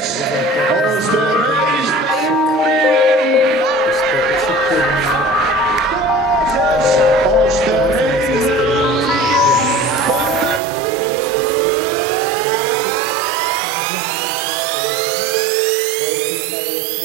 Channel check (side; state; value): left; drops out; at 10.6 s